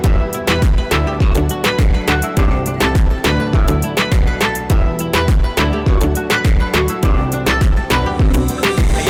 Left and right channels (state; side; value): identical; both; correlation 1.00